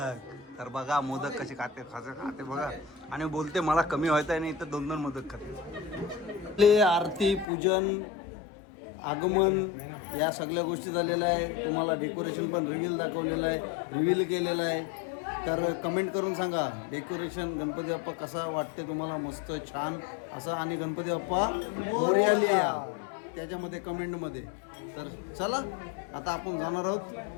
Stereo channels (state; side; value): drops out; right; at 7.5 s